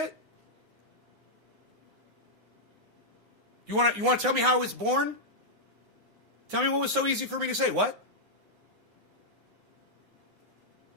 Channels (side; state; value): left; late; 9.6 ms